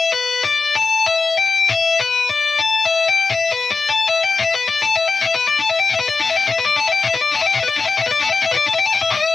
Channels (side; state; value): right; quieter; 4.3 dB